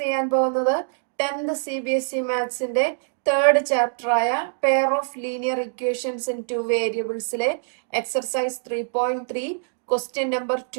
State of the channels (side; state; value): left; silent; digital silence